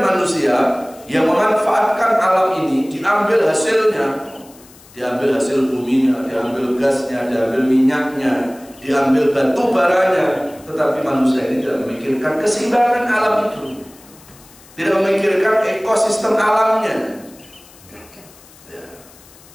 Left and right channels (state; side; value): noise; left; hiss, 24 dB below the sound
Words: manusia yang memanfaatkan alam ini, diambil hasilnya, diambil hasil buminya, diambil gasnya, diambil minyaknya, diambil batu baranya, tetapi manusia ini tidak memikirkan keseimbangan alam itu, tidak memikirkan ekosistem alamnya. Ya.